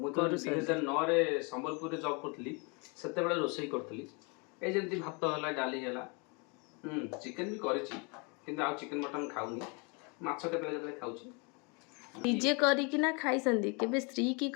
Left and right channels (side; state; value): right; quieter; 32.0 dB